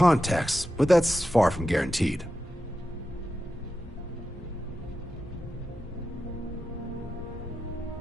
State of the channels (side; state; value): both; normal; correlation 0.90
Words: but that's far from guaranteed.